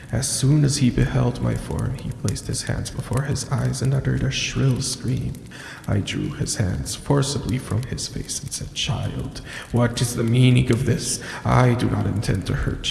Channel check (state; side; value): identical; both; correlation 1.00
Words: As soon as he beheld my form, he placed his hands before his eyes and uttered a shrill scream. I drew his hands forcibly from his face and said, "Child, what is the meaning of this? I do not intend to